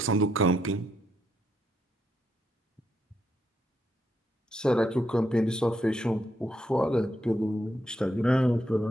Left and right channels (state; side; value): normal; both; correlation 0.78